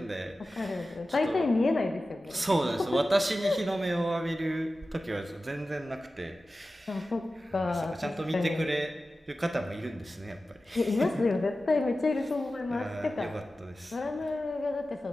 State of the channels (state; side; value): normal; both; correlation 0.94